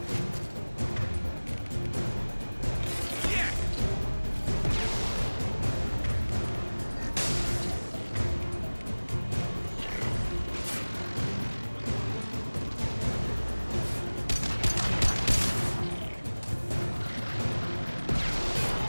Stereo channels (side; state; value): both; inverted; correlation -1.00